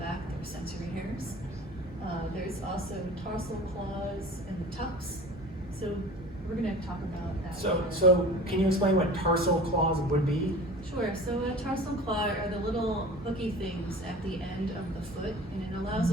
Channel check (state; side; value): normal; both; correlation 0.40